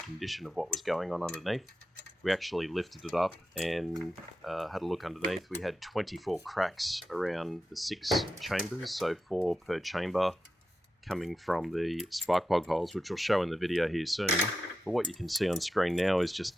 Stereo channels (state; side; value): normal; both; correlation 0.90